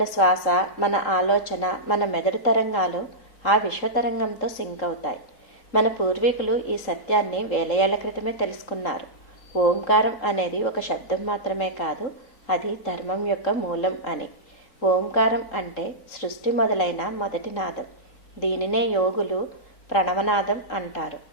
శ్వాస, మన ఆలోచన, మన మెదడు తరంగాలు ఆ విశ్వతరంగంతో సింక్ అవుతాయి. మన పూర్వీకులు ఈ సత్యాన్ని వేల ఏళ్ల క్రితమే తెలుసుకున్నారు. ఓంకారం అనేది ఒక శబ్దం మాత్రమే కాదు, అది ధర్మం యొక్క మూలం అని. ఓంకారం అంటే సృష్టి మొదలైన మొదటి నాదం. దీనినే యోగులు ప్రణవనాదం అంటారు.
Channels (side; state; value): right; late; 3.8 ms